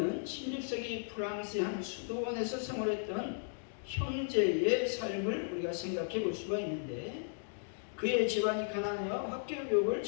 16세기 프랑스의 한 수도원에서 생활했던 형제의 삶을 우리가 생각해 볼 수가 있는데, 그의 집안이 가난하여 학교 교육을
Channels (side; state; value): right; silent; digital silence